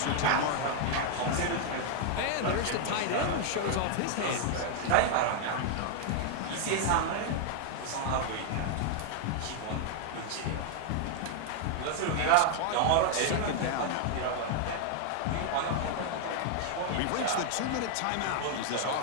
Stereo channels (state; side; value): different; both; correlation 0.00